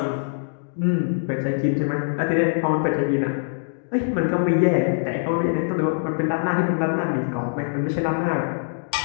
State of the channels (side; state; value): right; silent; digital silence